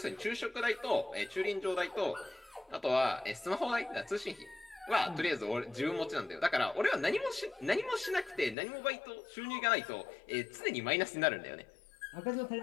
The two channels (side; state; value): right; drops out; at 8.6 s